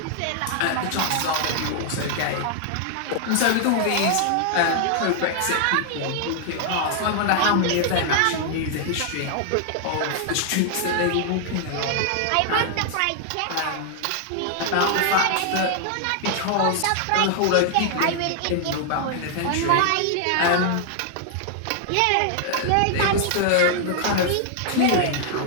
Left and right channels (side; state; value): both; different; correlation 0.00